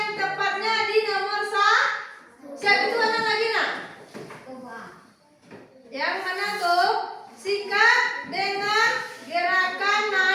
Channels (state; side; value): identical; both; correlation 1.00